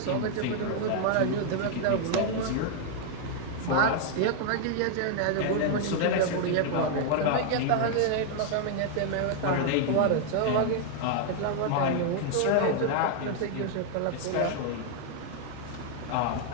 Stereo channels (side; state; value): both; different; correlation 0.00